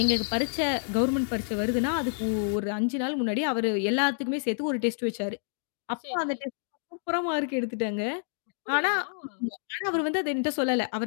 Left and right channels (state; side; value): silent; right; digital silence